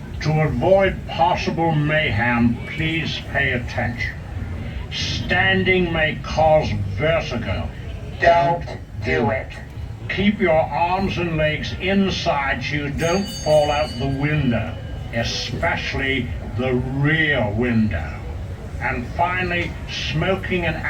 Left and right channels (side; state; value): both; identical; correlation 1.00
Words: To avoid possible mayhem, please pay attention. Standing may cause vertigo. Don't do it. Keep your arms and legs inside so you don't fall out the window, especially the rear window. And finally, smoking and